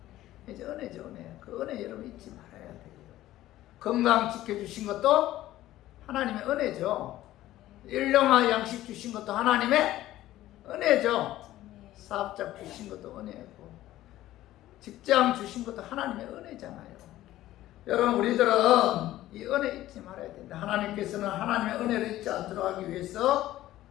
이제 은혜죠, 은혜. 그 은혜 여러분 잊지 말아야 돼요. 건강 지켜주신 것도 하나님의 은혜죠. 일용할 양식 주신 것도 하나님의 은혜죠. 사업자 주신 것도 은혜고, 직장 주신 것도 하나님의 은혜잖아요. 여러분, 우리들은 이 은혜 잊지 말아야 된다. 하나님께서는 하나님의 은혜를 잊지 않도록 하기 위해서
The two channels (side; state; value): right; quieter; 14.8 dB